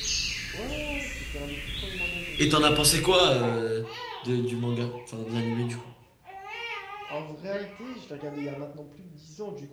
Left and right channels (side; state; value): both; identical; correlation 1.00